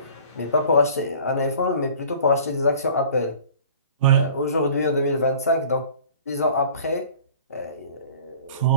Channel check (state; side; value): inverted; both; correlation -0.47